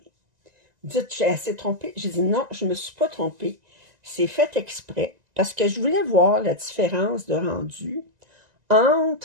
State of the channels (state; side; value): late; left; 1.9 ms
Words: Vous dites, j'ai assez trompé? J'ai dit non, je ne me suis pas trompée. C'est fait exprès parce que je voulais voir la différence de rendu